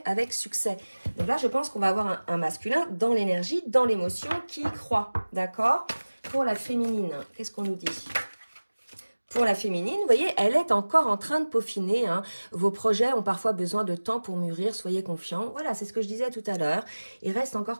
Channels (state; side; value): inverted; both; correlation -1.00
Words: avec succès. Donc là, je pense qu'on va avoir un masculin dans l'énergie, dans l'émotion, qui y croit, d'accord? Pour la féminine, qu'est-ce qu'on nous dit? Pour la féminine, vous voyez, elle est encore en train de peaufiner. Hein. Vos projets ont parfois besoin de temps pour mûrir, soyez confiants. Voilà, c'est ce que je disais tout à l'heure. Il reste